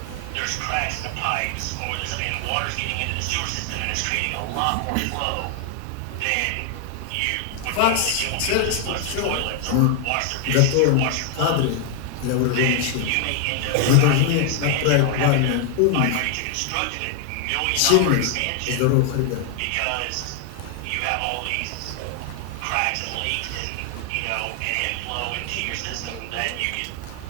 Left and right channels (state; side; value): different; both; correlation 0.00